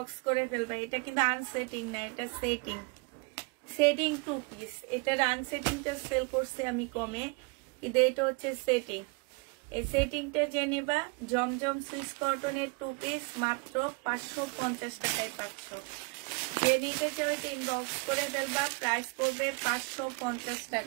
করে ফেলবা। এটা কিন্তু আনসেটিং না, এটা সেটিং। Setting 2 piece. এটার আনসেটিংটা সেল করছে আমি কমে, কিন্তু এটা হচ্ছে সেটিং। এই সেটিংটা যে নিবা, জমজম সুইস কটনের 2 পিস মাত্র 550 টাকায় পাচ্ছ। যে নিতে চাও এটা ইনবক্স করে ফেলবা। প্রাইস পড়বে 550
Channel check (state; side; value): quieter; left; 29.8 dB